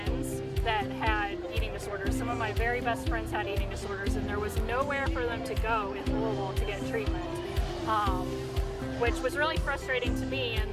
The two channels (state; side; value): identical; both; correlation 1.00